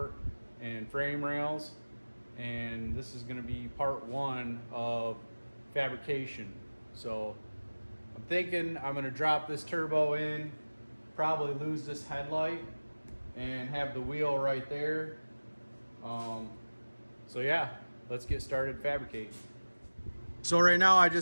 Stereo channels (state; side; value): inverted; both; correlation -1.00